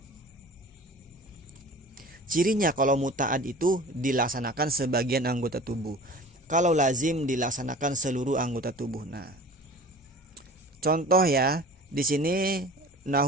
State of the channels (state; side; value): normal; both; correlation 0.41